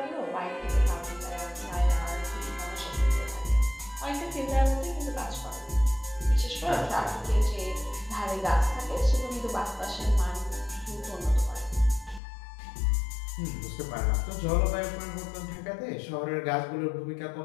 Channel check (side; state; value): right; drops out; at 12.2 s